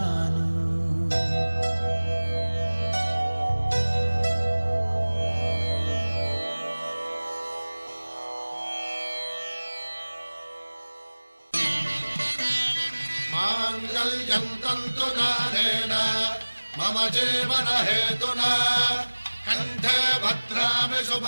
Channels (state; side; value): inverted; both; correlation -1.00